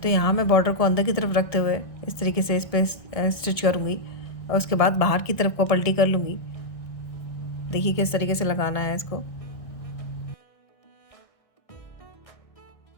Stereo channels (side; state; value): right; late; 1.6 ms